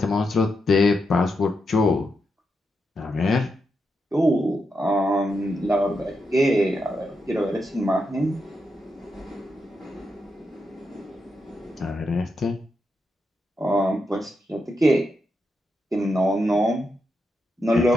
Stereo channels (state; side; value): normal; both; correlation 0.84